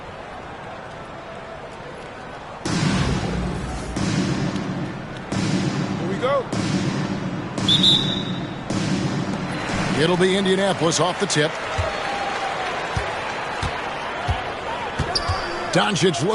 It'll be Indianapolis off the tip. Doncic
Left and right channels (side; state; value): both; identical; correlation 1.00